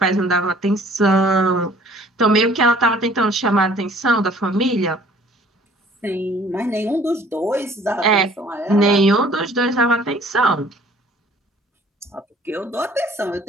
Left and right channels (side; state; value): both; normal; correlation 0.54